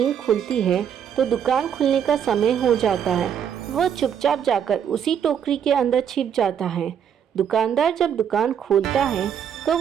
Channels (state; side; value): quieter; left; 8.5 dB